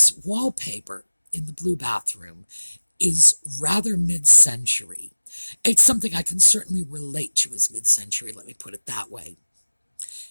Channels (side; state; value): both; inverted; correlation -1.00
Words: wallpaper in the blue bathroom is rather mid-century. It's something I can certainly relate to as mid-century, let me put it that way.